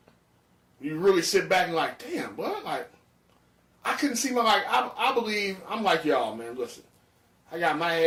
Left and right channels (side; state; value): both; identical; correlation 1.00